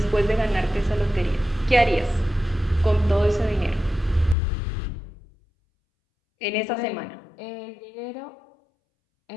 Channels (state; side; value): drops out; right; at 4.4 s